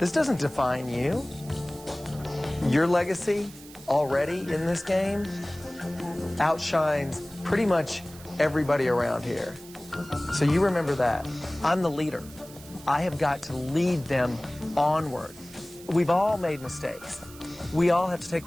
doesn't define you. Your legacy already in this game outshines pretty much everybody around here. So you remember that. I'm the leader. I have got to lead them onward. We've all made mistakes. We all have to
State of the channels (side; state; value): right; noise; hiss, 19 dB below the sound